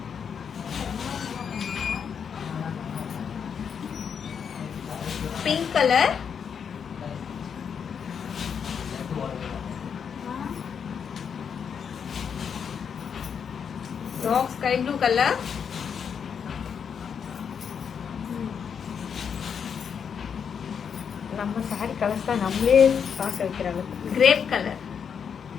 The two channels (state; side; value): quieter; right; 7.1 dB